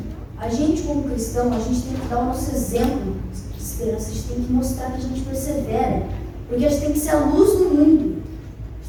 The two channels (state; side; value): identical; both; correlation 1.00